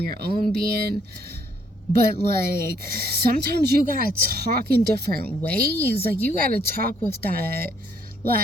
own being. But like, sometimes you gotta talk in different ways. Like, you gotta talk with that,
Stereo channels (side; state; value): both; normal; correlation 0.67